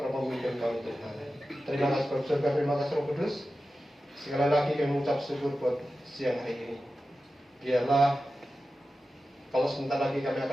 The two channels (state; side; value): normal; both; correlation 0.93